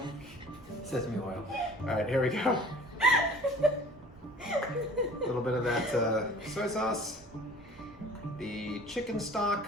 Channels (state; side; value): noise; right; rumble, 23 dB below the sound